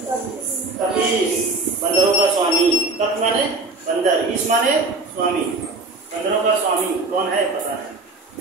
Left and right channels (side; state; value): left; quieter; 3.3 dB